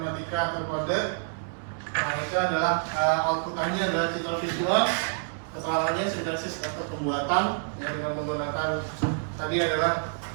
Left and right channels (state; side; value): silent; left; digital silence